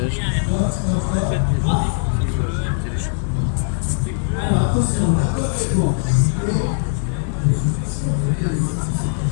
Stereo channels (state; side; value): silent; right; digital silence